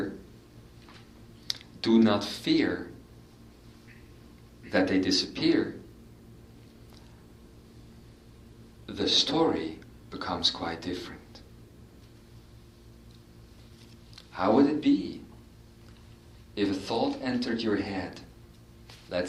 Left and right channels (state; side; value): identical; both; correlation 1.00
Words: do not fear that they disappear, the story becomes quite different. How would it be if a thought entered your head?